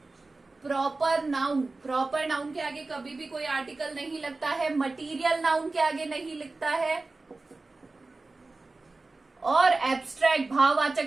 proper noun, proper noun के आगे कभी भी कोई आर्टिकल नहीं लगता है। मटीरियल नाउन के आगे नहीं लिखता है, और एब्स्ट्रैक्ट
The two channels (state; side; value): quieter; left; 3.4 dB